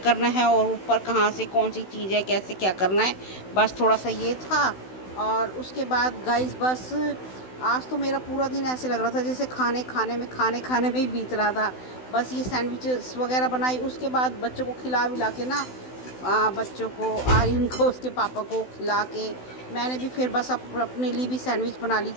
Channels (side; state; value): right; late; 16 ms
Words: है और ऊपर कहाँ से कौन सी चीज़ है, कैसे क्या करना है। बस थोड़ा सा ये था। और उसके बाद गाइस बस आज तो मेरा पूरा दिन ऐसे लग रहा था जैसे खाने खाने में ही बीत रहा था। बस ये सैंडविचेस वगैरह बनाई, उसके बाद बच्चों को खिला विला के ना, बच्चों को, आर्यन को, उसके पापा को खिला के मैंने भी फिर बस अपने लिए भी सैंडविच बना ली